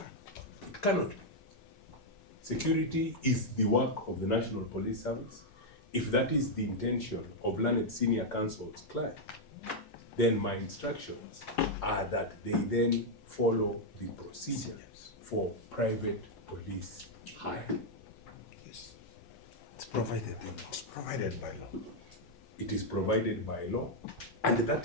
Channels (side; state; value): both; normal; correlation -0.02